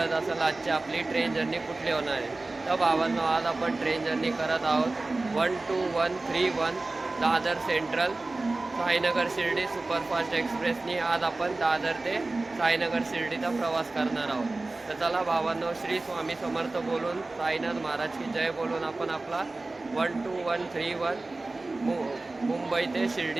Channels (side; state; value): left; quieter; 3.2 dB